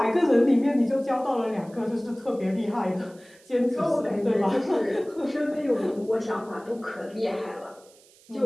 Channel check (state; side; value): noise; right; hiss, 27 dB below the sound